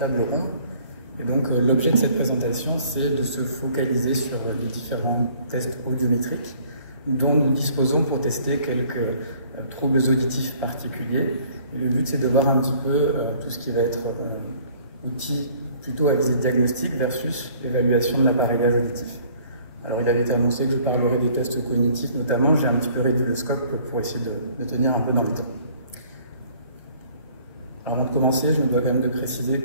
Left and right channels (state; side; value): inverted; both; correlation -0.56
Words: ronde. Et donc l'objet de cette présentation, c'est de se focaliser sur les différents tests audiométriques dont nous disposons pour tester quelques troubles auditifs particuliers. Et le but, c'est de voir un petit peu tout ce qui va être outil plutôt à visée diagnostique versus évaluation de l'appareillage auditif. Alors il avait été annoncé que je parlerai des tests cognitifs notamment, j'ai un petit peu réduit le scope pour essayer de tenir un peu dans le temps. Avant de commencer, je me dois quand même de préciser